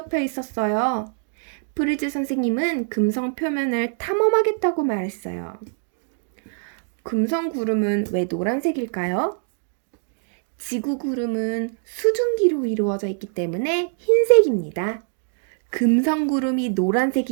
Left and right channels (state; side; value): silent; left; 58 dB below the other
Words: 있었어요. 프리즈 선생님은 금성 표면을 탐험하겠다고 말했어요. 금성 구름은 왜 노란색일까요? 지구 구름은 수증기로 이루어져 있기 때문에 흰색입니다. 금성 구름이